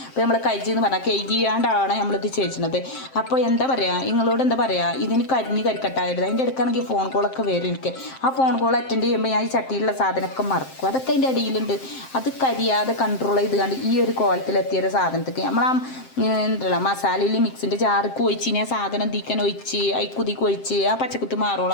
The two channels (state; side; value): late; right; 7.6 ms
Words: അപ്പോൾ നമ്മൾ കഴിച്ച് എന്ന് പറഞ്ഞാൽ കൈകിയാണ്ടാണ് നമ്മളിത് ചെയ്യുന്നത്. അപ്പോൾ എന്താ പറയുക, നിങ്ങളോട് എന്താ പറയുക, ഇതിന് കരിക്കട്ടായിരുന്നു. അതിൻ്റെ അടുക്കാണെങ്കിൽ ഫോൺ കോളൊക്കെ വരും എനിക്ക്. ആ ഫോൺ കോൾ അറ്റൻഡ് ചെയ്യുമ്പോൾ ഞാൻ ഈ ചട്ടിയിലുള്ള സാധനമൊക്കെ മറക്കും. അതൊക്കെ അതിൻ്റെ അടിയിലുണ്ട്. അത് കരിയാതെ കൺട്രോൾ ചെയ്ത് കണ്ട് ഈ ഒരു കോലത്തിലെത്തിയൊരു സാധനത്തേക്ക് നമ്മൾ എന്തല്ല മസാലയിൽ മിക്സിൻ്റെ ജാർക്ക് ഒഴിച്ച് ആ സാധനം തീക്കാൻ ഒഴിച്ച് കുതിക്ക് ഒഴിച്ച് ആ പച്ചക്കുത്ത്